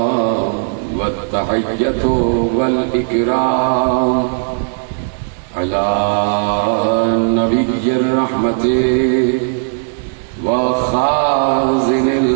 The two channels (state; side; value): silent; left; digital silence